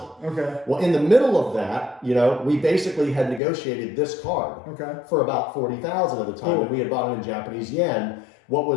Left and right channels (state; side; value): drops out; right; at 3.4 s